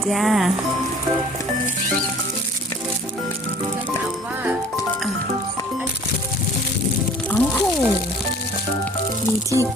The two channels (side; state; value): both; normal; correlation 0.49